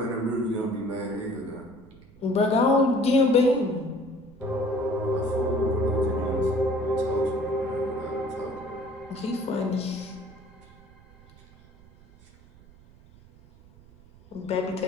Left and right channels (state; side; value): noise; right; rumble, 24 dB below the sound